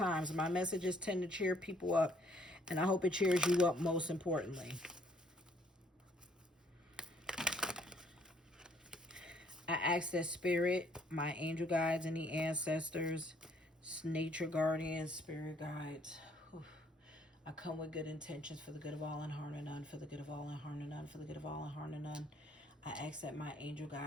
My messages tend to cheer people up, and I hope it cheers you up most importantly. I ask that spirit, my angel guides and the ancestors, nature guardians, spirit guides, I come with good intentions for the good of all and harm to none, for the good of all and harm to none, for the good of all and harm to none. I ask that my angel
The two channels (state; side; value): normal; both; correlation 0.64